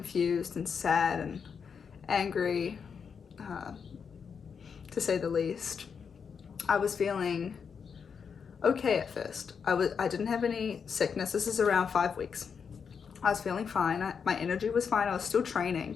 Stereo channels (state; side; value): quieter; right; 6.4 dB